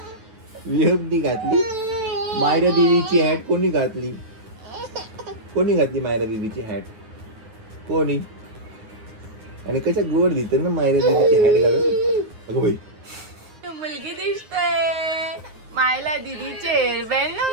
विहबनी घातली. मायरा दीदीची हॅट कोणी घातली? कोणी घातली मायरा दीदीची हॅट? कोणी? आणि कशा गोड दिसते ना मायरा दीदीची हॅट घालून. अगं बाई मुलगी दिसते. मायला दीदीचे हेअरबँड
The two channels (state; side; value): late; left; 9.6 ms